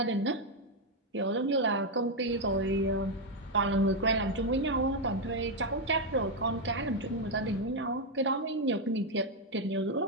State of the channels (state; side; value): normal; both; correlation 0.03